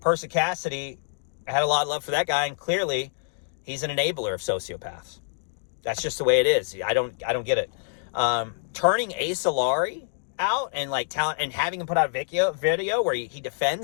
Cassidy had a lot of love for that guy, and clearly he's an enabler of sociopaths. That's just the way it is. I don't get it. Turning Ace Alari out and and having him put out a video where he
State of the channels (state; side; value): silent; right; digital silence